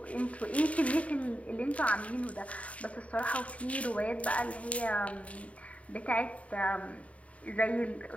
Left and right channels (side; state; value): right; late; 0.066 ms